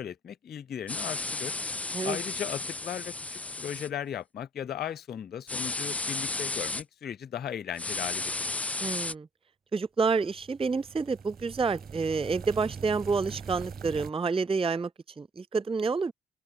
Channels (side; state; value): both; normal; correlation 0.59